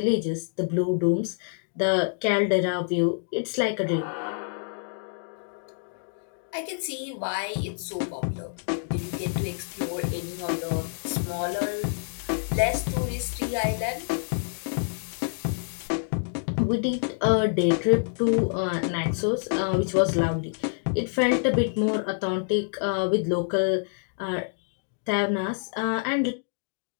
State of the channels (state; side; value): silent; right; digital silence